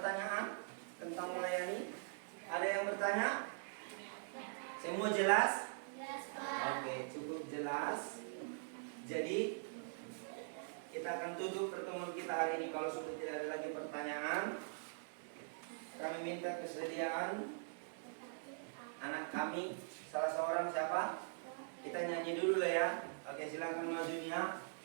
tentang melayani? Ada yang bertanya? Semua jelas? Oke, cukup jelas. Jadi kita akan tutup pertemuan kita hari ini. Kalau sudah tidak ada lagi pertanyaan, kami minta kesediaan anak kami, salah seorang siapa? Kita nyanyi dulu lah ya. Oke, silakan majunya.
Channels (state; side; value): silent; left; digital silence